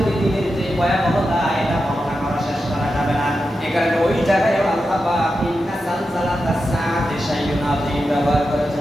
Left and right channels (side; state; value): both; normal; correlation 0.89